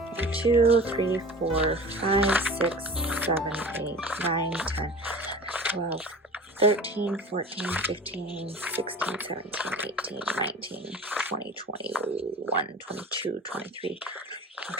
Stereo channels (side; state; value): both; normal; correlation 0.39